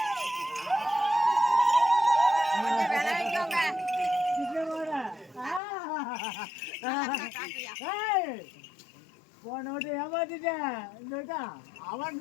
போனோட்டு ஏமாத்திட்டேன் அவன்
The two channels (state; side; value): drops out; right; at 5.6 s